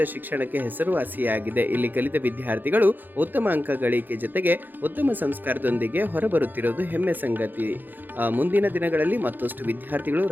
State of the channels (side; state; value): left; late; 0.088 ms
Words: ಶಿಕ್ಷಣಕ್ಕೆ ಹೆಸರುವಾಸಿಯಾಗಿದೆ. ಇಲ್ಲಿ ಕಲಿತ ವಿದ್ಯಾರ್ಥಿಗಳು ಉತ್ತಮ ಅಂಕ ಗಳಿಕೆ ಜೊತೆಗೆ ಉತ್ತಮ ಸಂಸ್ಕಾರದೊಂದಿಗೆ ಹೊರಬರುತ್ತಿರುವುದು ಹೆಮ್ಮೆ ಸಂಗತಿ. ಮುಂದಿನ ದಿನಗಳಲ್ಲಿ ಮತ್ತಷ್ಟು ವಿದ್ಯಾರ್ಥಿಗಳು